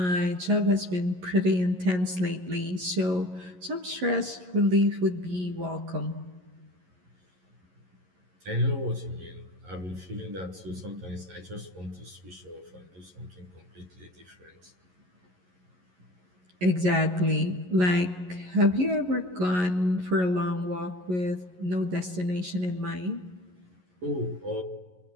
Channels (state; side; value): late; left; 11 ms